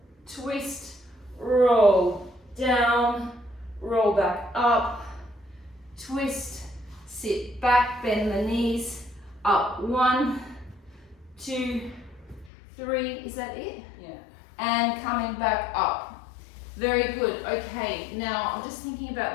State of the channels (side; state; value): right; drops out; at 12.5 s